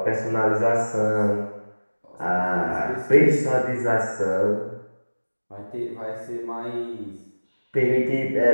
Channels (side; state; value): both; inverted; correlation -1.00